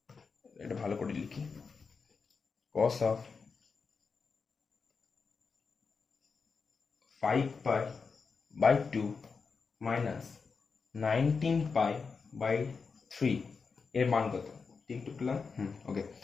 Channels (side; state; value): right; quieter; 5.1 dB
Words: এটা ভালো করে লিখি, কস অফ 5π/2 মাইনাস 19π/3 এর মান কত? টিকটুক পেলাম, ওকে,